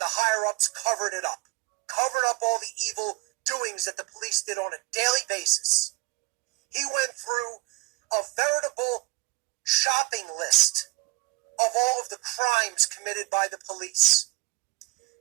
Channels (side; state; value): left; quieter; 23.6 dB